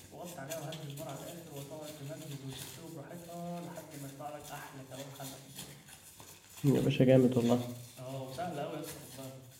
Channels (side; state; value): both; identical; correlation 1.00